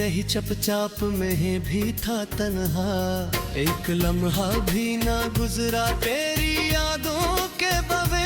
चपचाप में भी था तन्हा। एक लम्हा भी ना गुजरा तेरी यादों के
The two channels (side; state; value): both; identical; correlation 1.00